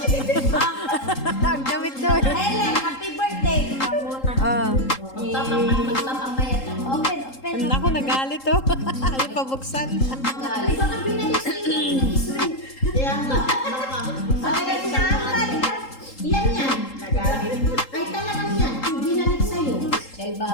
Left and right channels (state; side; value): late; right; 3.8 ms